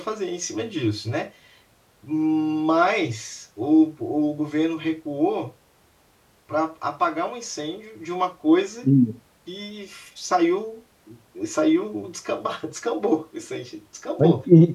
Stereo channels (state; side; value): identical; both; correlation 1.00